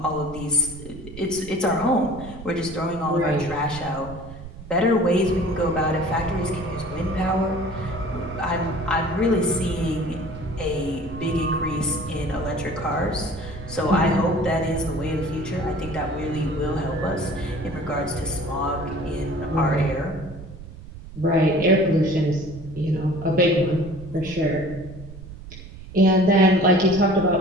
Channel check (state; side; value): noise; right; rumble, 14 dB below the sound